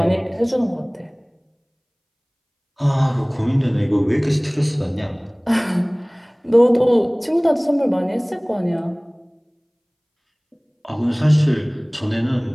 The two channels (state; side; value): identical; both; correlation 1.00